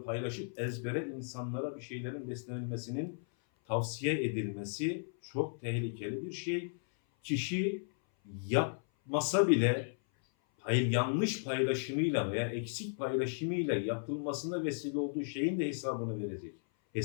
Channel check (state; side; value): silent; right; 54 dB below the other